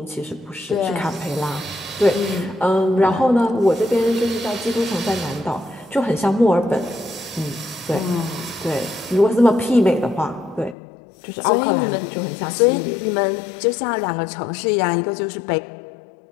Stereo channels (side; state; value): right; drops out; at 10.8 s